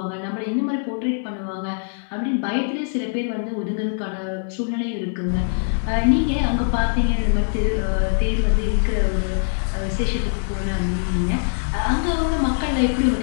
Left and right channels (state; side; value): silent; right; digital silence